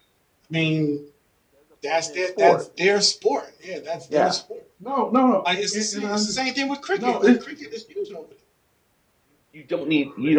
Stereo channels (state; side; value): identical; both; correlation 1.00